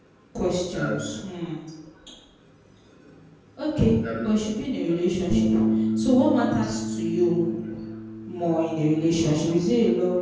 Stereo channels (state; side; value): identical; both; correlation 1.00